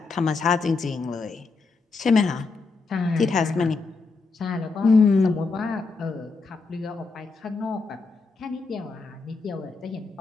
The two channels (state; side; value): quieter; right; 4.2 dB